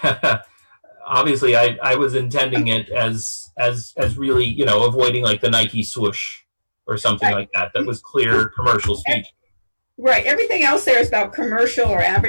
obviously I was intending it as really, you know, avoiding like the Nike swoosh or something like that. That was clear commercial speech. Right. Everything else there is about commercial or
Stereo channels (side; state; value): both; inverted; correlation -1.00